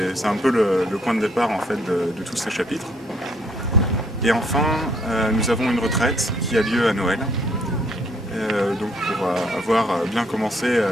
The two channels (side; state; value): both; normal; correlation 0.67